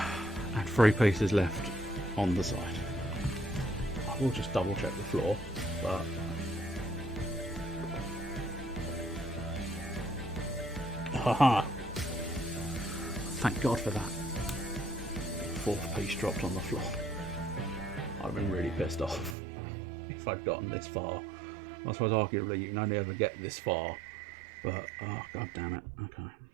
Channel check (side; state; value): left; drops out; at 19.4 s